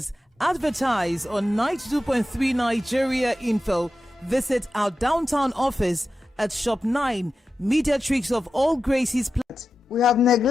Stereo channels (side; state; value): both; normal; correlation 0.92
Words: Advertise on 92.3 Nigeria Info. Visit our downtown office at Shop 9, Mediatrix of All Gracie's Plaza. We have